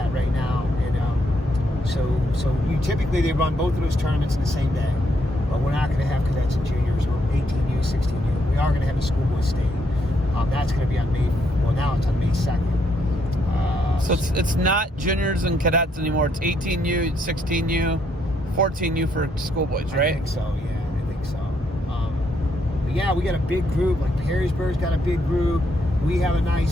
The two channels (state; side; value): normal; both; correlation 0.74